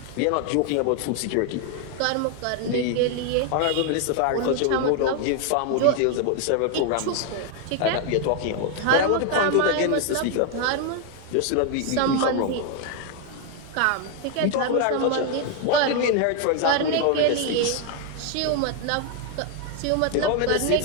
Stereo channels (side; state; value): both; different; correlation 0.01